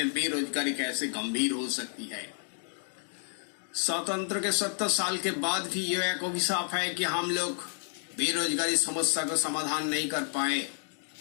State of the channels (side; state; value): right; silent; 57 dB below the other